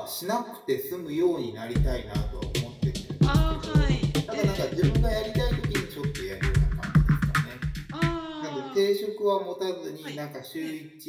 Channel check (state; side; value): identical; both; correlation 1.00